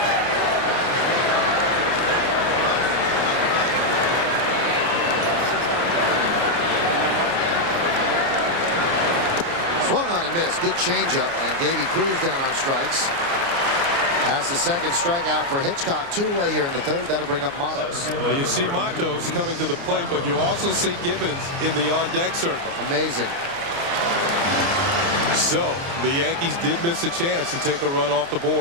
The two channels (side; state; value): left; late; 29 ms